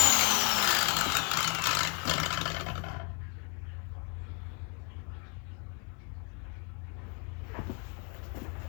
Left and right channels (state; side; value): quieter; right; 37.2 dB